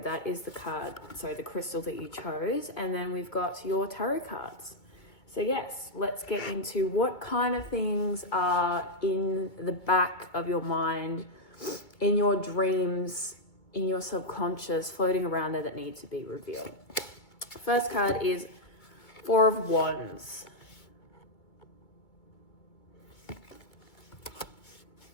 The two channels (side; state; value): right; late; 2.2 ms